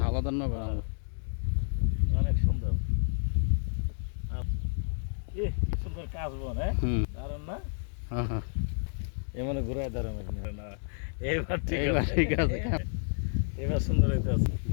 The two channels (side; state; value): right; silent; digital silence